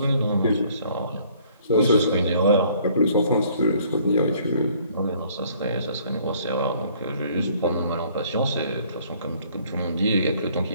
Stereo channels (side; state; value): both; inverted; correlation -0.60